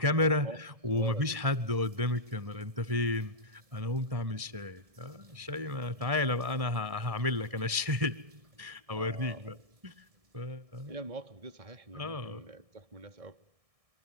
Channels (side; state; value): left; late; 1.6 ms